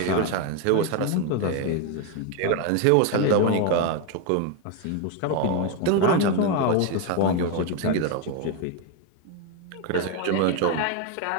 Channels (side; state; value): both; different; correlation 0.02